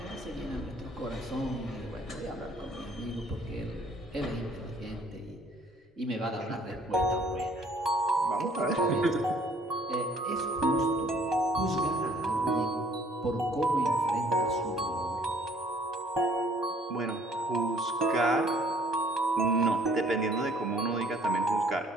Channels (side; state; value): both; normal; correlation 0.58